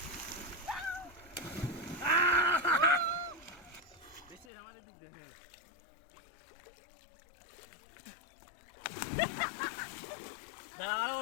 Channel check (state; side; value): drops out; right; at 4.5 s